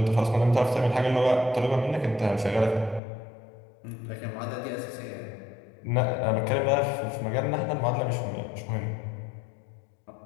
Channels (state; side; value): drops out; right; at 3.0 s